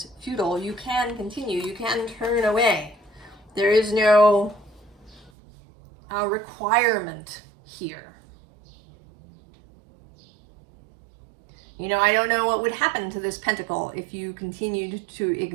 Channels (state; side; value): drops out; left; at 5.3 s